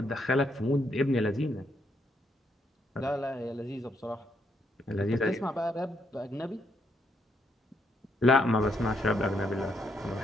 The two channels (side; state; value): both; normal; correlation 0.75